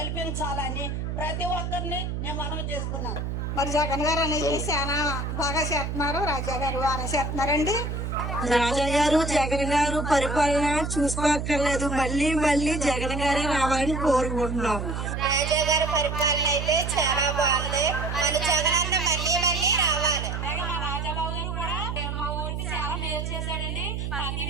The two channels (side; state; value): right; noise; hum, 3 dB below the sound